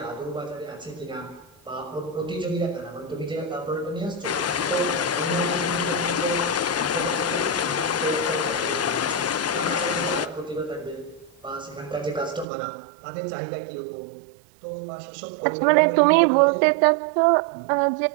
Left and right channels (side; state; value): left; drops out; at 12.5 s